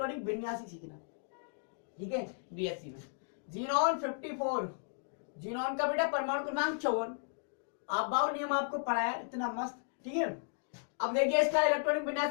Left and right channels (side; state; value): right; silent; digital silence